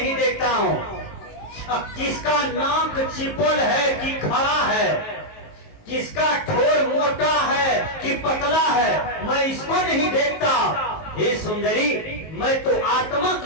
देखता हूँ। अब किसका नाक चिपल है कि खड़ा है, किसका ठोर मोटा है कि पतला है, मैं इसको नहीं देखता। हे सुंदरी, मैं तो आत्मा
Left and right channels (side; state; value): right; late; 19 ms